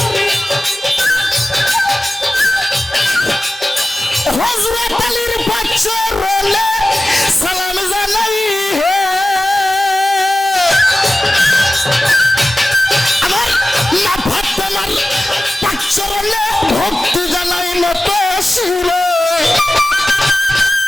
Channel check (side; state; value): both; normal; correlation 0.96